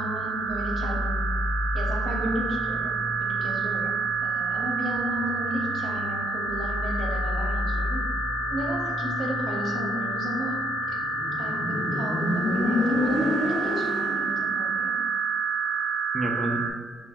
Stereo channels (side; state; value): both; normal; correlation 0.68